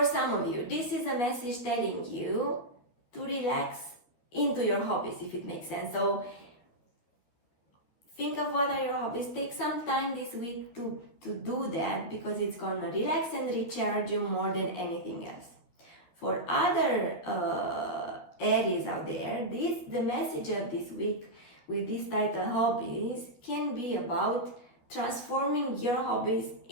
some of you, this is a message telling you to relax into your hobbies, if it makes sense. So think of what are your hobbies. Take some time this week to do that, because it's gonna relax and recharge you more than anything else. For other Aries out there, the message of this week with this title, hobbies, can be about transforming your hobbies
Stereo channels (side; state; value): right; late; 13 ms